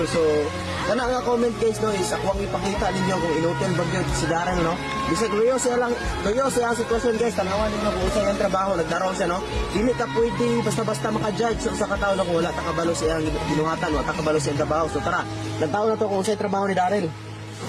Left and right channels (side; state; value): both; identical; correlation 1.00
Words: So kana nga comment guys no is ako ang ipakita ninyo kung inotel ba gyud si Daryl no. Bisag luyo siya ang sitwasyon guys, tanawan ninyo kung usay ang trabaho, nagdaraw siya no. Dili ta pwede basta-basta maka-judge sa kataw no kung wala ta kabalo siya ang ginuhatan, wala ta kabalo siya ang trabaho. So tara, nagtaon na to kung usay trabaho ni Daryl.